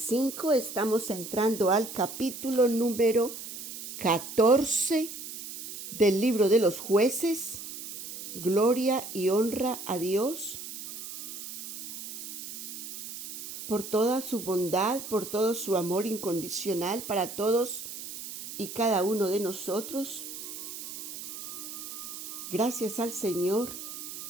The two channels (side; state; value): right; noise; hiss, 9 dB below the sound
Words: Estamos entrando al capítulo número 14 del libro de los jueces. Gloria y honra a Dios por toda su bondad, por todo su amor incondicional para todos y cada uno de nosotros. Gracias al Señor